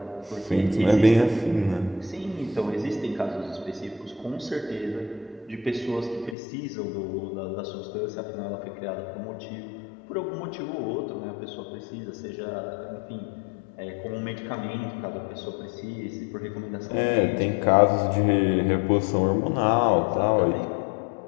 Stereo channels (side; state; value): right; drops out; at 6.4 s